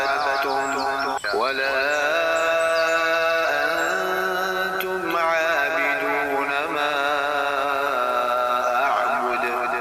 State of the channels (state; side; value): identical; both; correlation 1.00